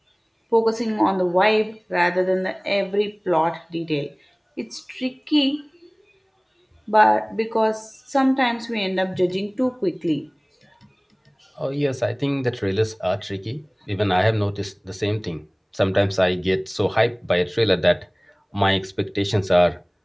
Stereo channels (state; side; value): identical; both; correlation 1.00